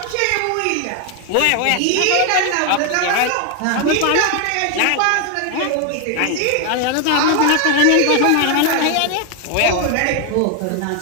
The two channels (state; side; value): different; both; correlation 0.01